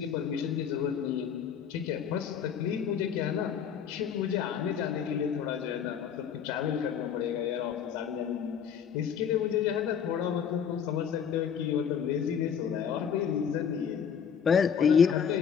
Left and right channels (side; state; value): right; quieter; 7.7 dB